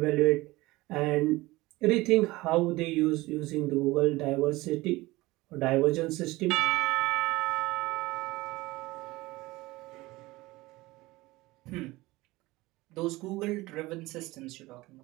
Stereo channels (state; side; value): quieter; left; 20.0 dB